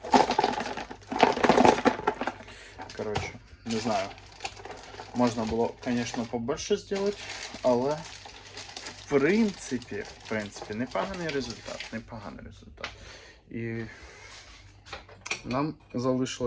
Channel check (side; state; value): both; identical; correlation 1.00